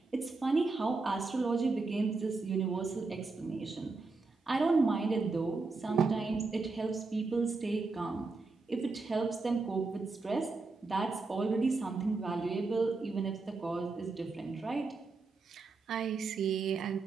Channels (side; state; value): left; quieter; 3.9 dB